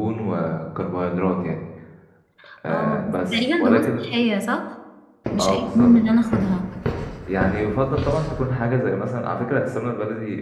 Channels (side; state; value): both; identical; correlation 1.00